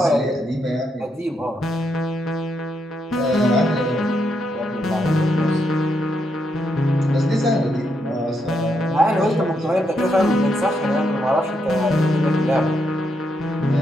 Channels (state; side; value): normal; both; correlation 0.79